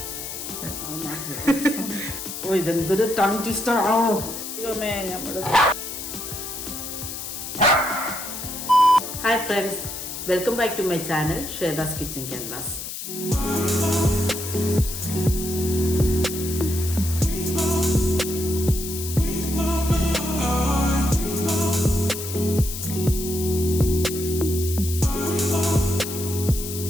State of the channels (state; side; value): noise; left; hiss, 7 dB below the sound